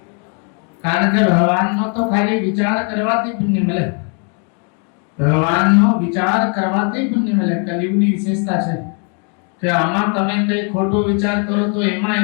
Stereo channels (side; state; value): right; quieter; 39.7 dB